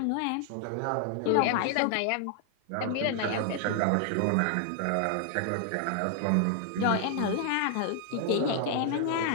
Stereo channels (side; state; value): both; different; correlation 0.00